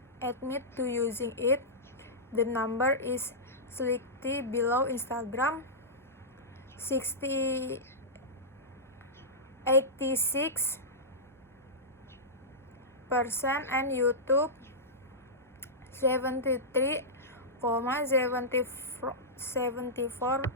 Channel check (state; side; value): normal; both; correlation -0.13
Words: admit to using it. The number is slightly below Instagram, 86%, and YouTube, 73.74%,